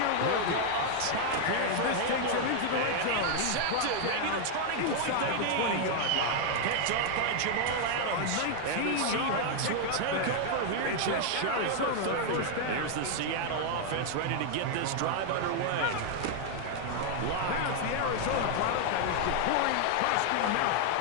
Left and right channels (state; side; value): different; both; correlation 0.00